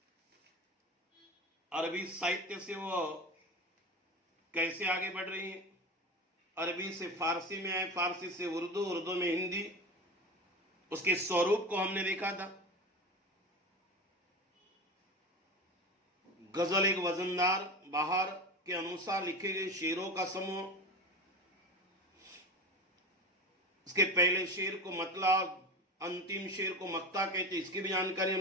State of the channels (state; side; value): normal; both; correlation 0.27